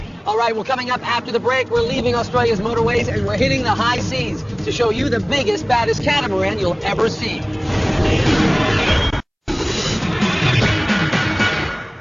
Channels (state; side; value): identical; both; correlation 1.00